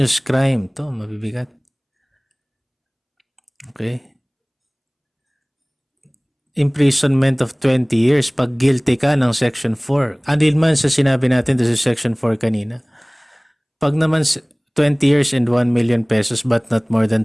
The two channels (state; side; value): identical; both; correlation 1.00